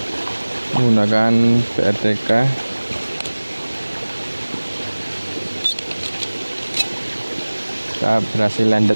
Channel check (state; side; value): inverted; both; correlation -1.00